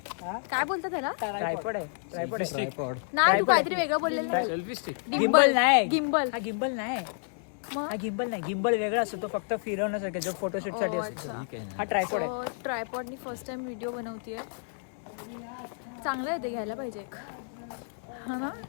काय बोलतात त्याला? ट्रायपॉड नाही, तू काहीतरी वेगळं बोललेलं नाही. गिम्बल नाही. गिम्बल हा गिम्बल नाही. हा गिम्बल नाही. गिम्बल वेगळा असतो, तो फक्त फिरवण्यासाठी जो फोटोशूट साठी असतो. हा ट्रायपॉड आहे. ट्रायपॉडनी फर्स्ट टाइम व्हिडिओ बनवतीये. चांगलं आहे ते, घ्यायला पाहिजे एक. हा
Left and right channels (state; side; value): silent; right; digital silence